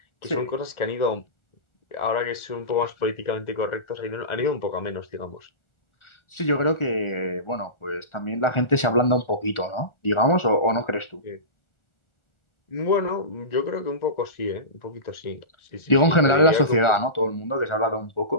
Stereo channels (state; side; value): late; right; 1.4 ms